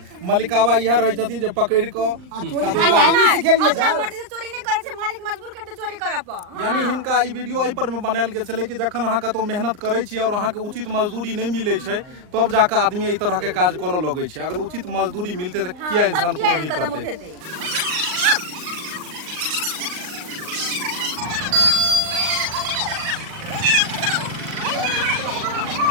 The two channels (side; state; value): left; late; 39 ms